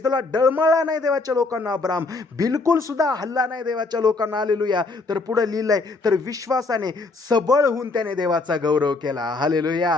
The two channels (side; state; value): right; quieter; 3.6 dB